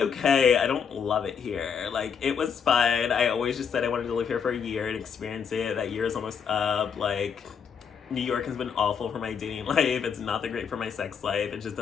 I don't love it here. Like, it was fun. I always just said I wanted to live here for a year and experience it. That year is almost up. Like, New York has been awful for my dating life. It's not that great for my sex life. It just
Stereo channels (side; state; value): right; quieter; 6.9 dB